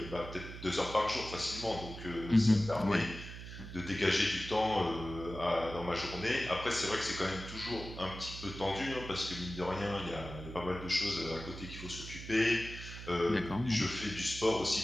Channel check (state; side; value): noise; right; hum, 11 dB below the sound